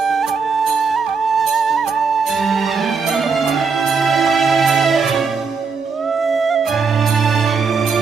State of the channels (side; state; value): left; quieter; 5.2 dB